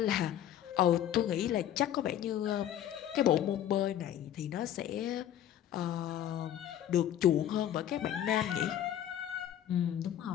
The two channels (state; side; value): quieter; right; 11.1 dB